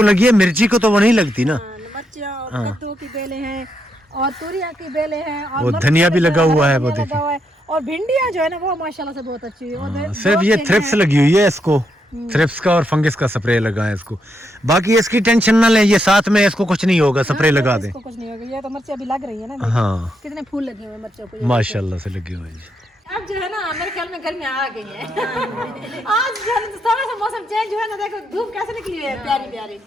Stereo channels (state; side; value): normal; both; correlation 0.80